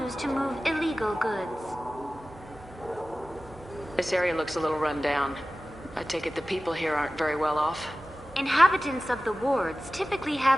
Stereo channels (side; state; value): both; normal; correlation 0.97